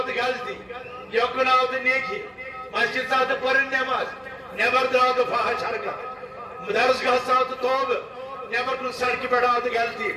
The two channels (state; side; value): identical; both; correlation 1.00